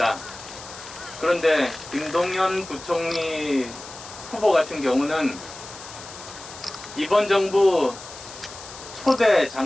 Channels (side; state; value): left; noise; hiss, 15 dB below the sound